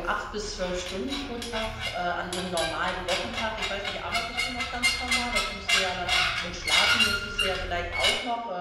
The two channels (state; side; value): identical; both; correlation 1.00